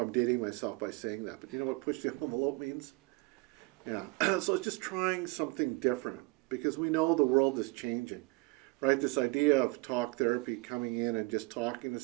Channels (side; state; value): left; quieter; 26.2 dB